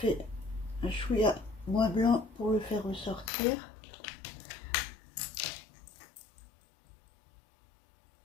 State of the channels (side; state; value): right; drops out; at 3.3 s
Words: un chouïa moins blanc pour le faire ressortir.